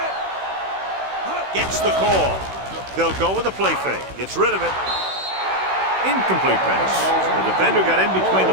Gets the call. They'll go with a play fake. Gets rid of it. Incomplete pass. The defender got in between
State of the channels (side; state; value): left; late; 16 ms